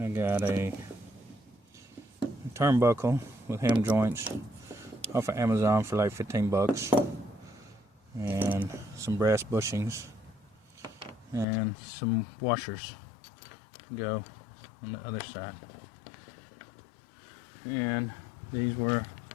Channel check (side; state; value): right; drops out; at 11.5 s